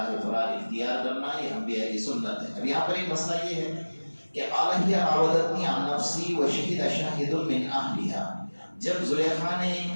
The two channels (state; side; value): inverted; both; correlation -1.00